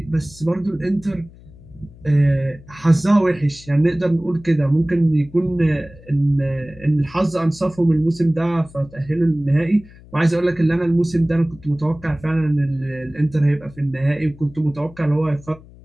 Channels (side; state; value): left; noise; hum, 22 dB below the sound